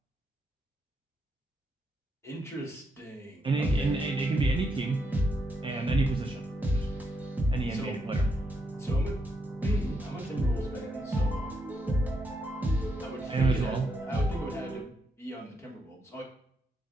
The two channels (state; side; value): normal; both; correlation 0.81